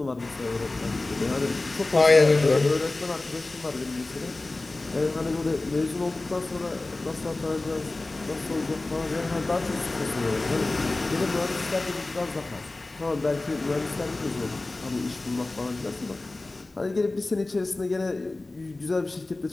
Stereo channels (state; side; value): quieter; right; 3.0 dB